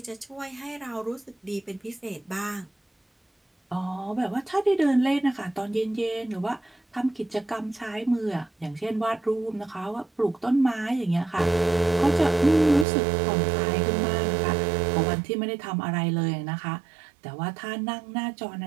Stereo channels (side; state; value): left; drops out; at 12.9 s